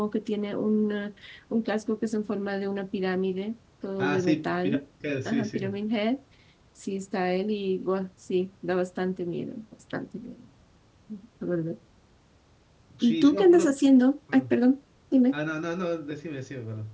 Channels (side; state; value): both; identical; correlation 1.00